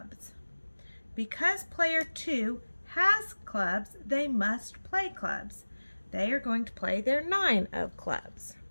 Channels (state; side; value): inverted; both; correlation -1.00